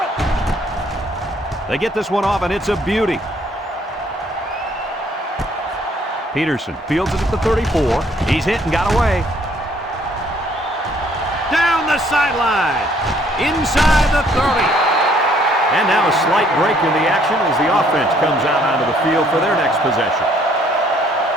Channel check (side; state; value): both; normal; correlation 0.64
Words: They get this one off, and it's a beauty. Peterson fields it at the 34. He's hit and got away. Down the sideline. Inside the 30. And now a slight break in the action as the offense comes out onto the field for their next possession.